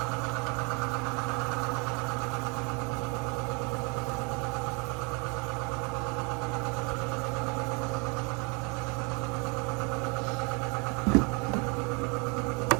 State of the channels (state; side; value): quieter; left; 31.7 dB